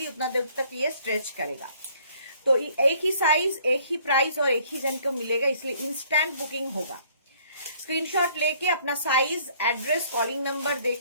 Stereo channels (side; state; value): both; inverted; correlation -0.61